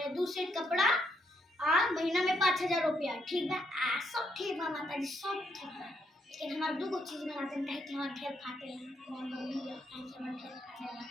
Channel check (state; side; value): normal; both; correlation 0.76